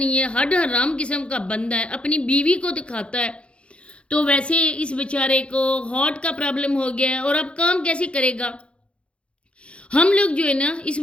ہے، ہڈ حرام قسم کا بندہ ہے، اپنی بیوی کو دکھاتا ہے، تو ویسے اس بیچارے کو ہارٹ کا پرابلم ہو گیا ہے اور اب کام کیسے کرے گا؟ ہم لوگ جو ہے نا اس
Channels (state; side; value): late; right; 0.059 ms